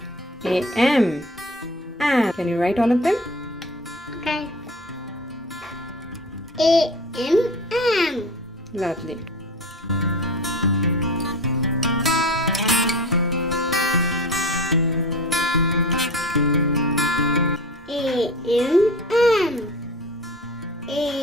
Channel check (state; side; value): normal; both; correlation 0.35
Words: AM. Am. Can you write all of them? Okay. A. M. M. Lovely. A. M. M.